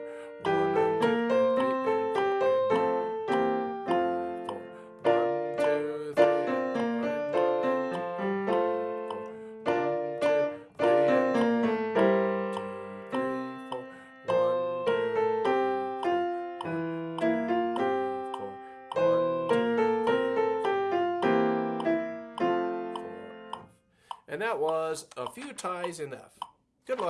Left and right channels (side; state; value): both; identical; correlation 1.00